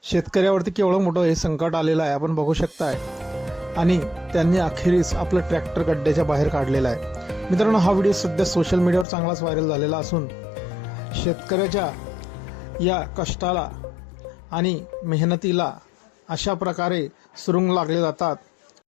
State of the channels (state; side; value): drops out; right; at 9.1 s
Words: शेतकऱ्यावरती केवढं मोठं हे संकट आलेलं आहे आपण बघू शकताय आणि त्यांनी अखेरीस आपलं ट्रॅक्टर गड्ड्याच्या बाहेर काढलेला आहे। मित्रांनो, हा व्हिडिओ सध्या सोशल मीडियावर चांगलाच व्हायरल झालेला असून शेतकऱ्याच्या या कष्टाला आणि मेहनतीला अशा प्रकारे सुरुंग लागले जातात।